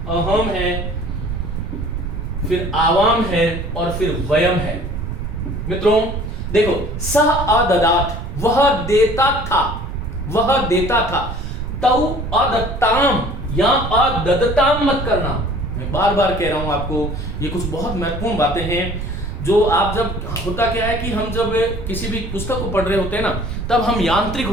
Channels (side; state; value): right; noise; rumble, 7 dB below the sound